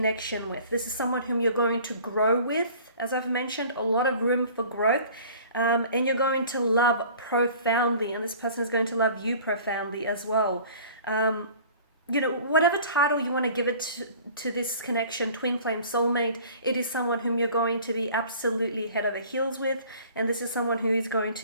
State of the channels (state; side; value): inverted; both; correlation -0.47